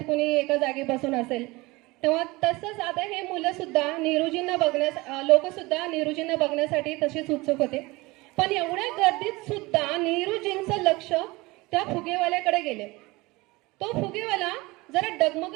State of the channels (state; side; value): quieter; left; 22.5 dB